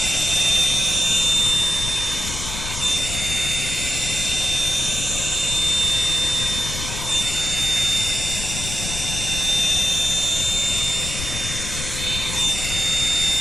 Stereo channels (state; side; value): noise; left; rumble, 7 dB below the sound